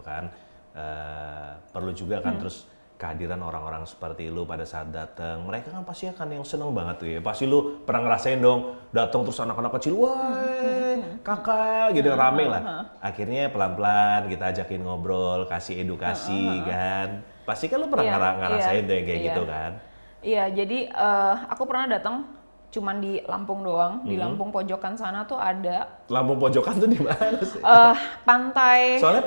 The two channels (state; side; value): inverted; both; correlation -1.00